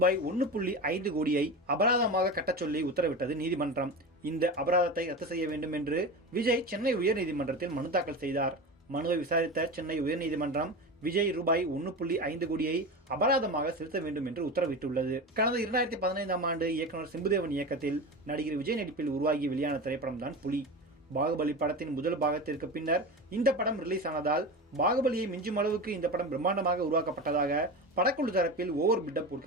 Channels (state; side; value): normal; both; correlation 0.26